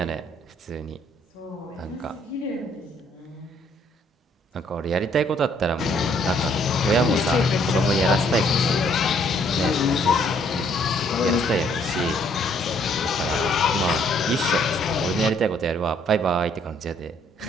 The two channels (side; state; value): both; normal; correlation 0.65